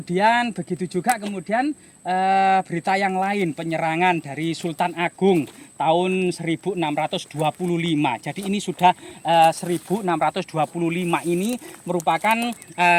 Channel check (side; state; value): both; identical; correlation 1.00